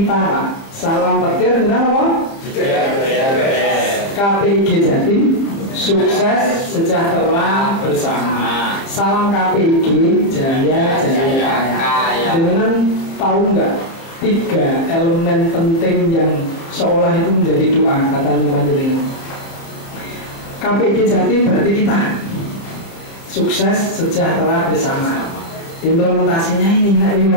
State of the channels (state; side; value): late; right; 30 ms